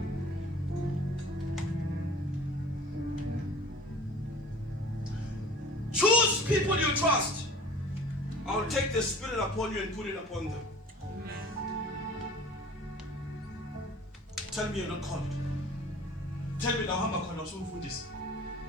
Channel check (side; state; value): both; normal; correlation 0.44